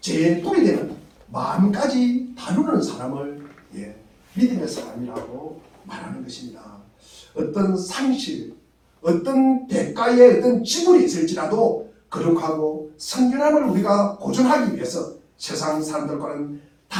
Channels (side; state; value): both; identical; correlation 1.00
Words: 뿔이 되는 마음까지 다루는 사람을 믿음의 사람이라고 말하는 것입니다. 어떤 상실, 어떤 대가의 어떤 지불이 있을지라도 거룩하고 성결함을 우리가 보존하기 위해서 세상 사람들과는